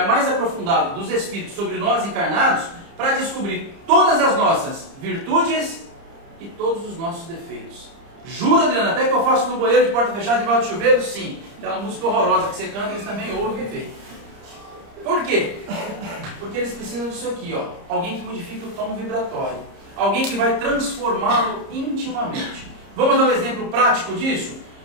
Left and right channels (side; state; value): left; late; 30 ms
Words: mais aprofundado dos espíritos sobre nós encarnados para descobrir todas as nossas virtudes e todos os nossos defeitos. Jura, Adriana, até que eu faço no banheiro de porta fechada debaixo de chuveiro? Sim. Aquela música horrorosa que você canta, eles também ouvem e veem. Por quê? Porque eles precisam disso aqui, ó. Alguém que modifique o tom vibratório. Alguém que vai transformá-lo intimamente. Vamos dar um exemplo prático disso?